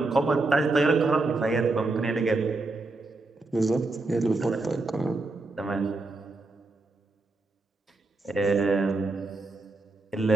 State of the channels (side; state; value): left; quieter; 3.3 dB